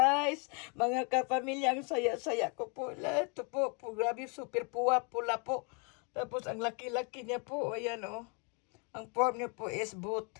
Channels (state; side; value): quieter; right; 35.2 dB